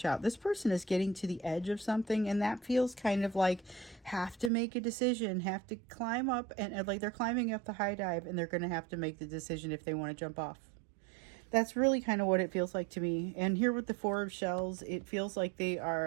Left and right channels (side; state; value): left; drops out; at 4.5 s